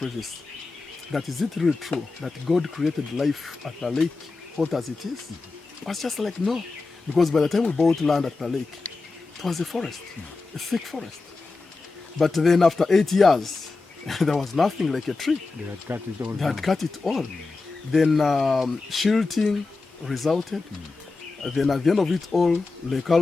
that is it really true that God created life at the lake hot as it is? I was just like, no. Because by the time we bought land at the lake, it was a forest, a thick forest. But then after 8 years, there was nothing like a tree. They had cut it all. They had cut it all. Then shilting resulted. Then at the end of it all, Lake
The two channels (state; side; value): quieter; right; 3.8 dB